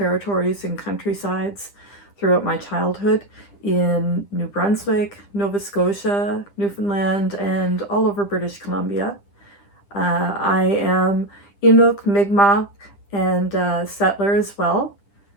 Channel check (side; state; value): right; late; 10 ms